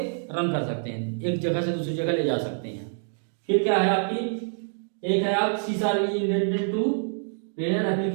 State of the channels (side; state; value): left; silent; 61 dB below the other